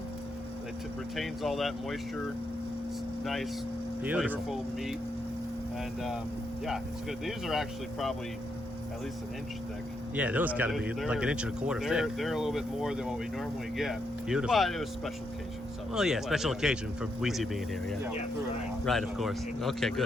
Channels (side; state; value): both; normal; correlation 0.80